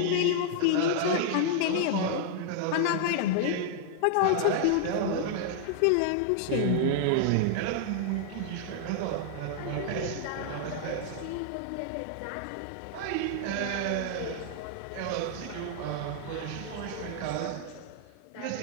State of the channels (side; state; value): both; different; correlation -0.01